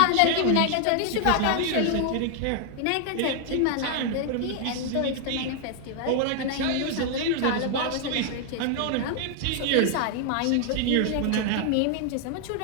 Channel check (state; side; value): different; both; correlation 0.00